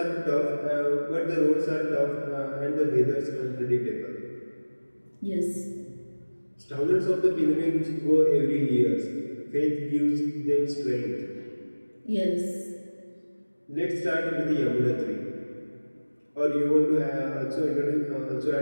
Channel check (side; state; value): both; inverted; correlation -1.00